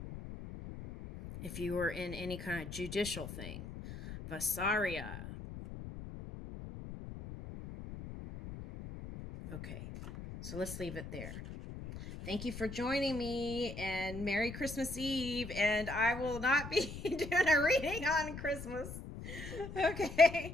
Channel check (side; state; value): left; noise; rumble, 10 dB below the sound